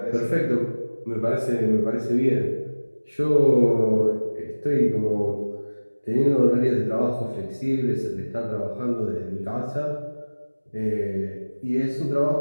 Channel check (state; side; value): inverted; both; correlation -1.00